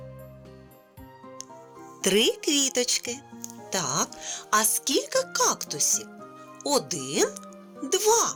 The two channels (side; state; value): both; identical; correlation 1.00